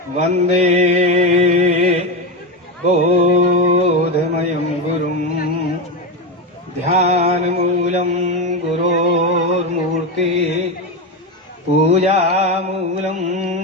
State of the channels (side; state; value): both; normal; correlation 0.14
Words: वन्दे बोधमयं गुरुं ध्यानमूलं गुरोर्मूर्ति पूजामूलं